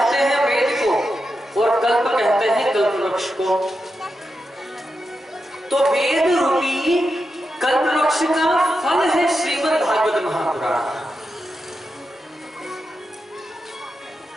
हैं वेद को और कल्प कहते हैं कल्प वृक्ष को। तो वेद रूपी कल्प वृक्ष का फल है श्रीमद् भागवत महापुराण।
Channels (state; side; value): normal; both; correlation 0.88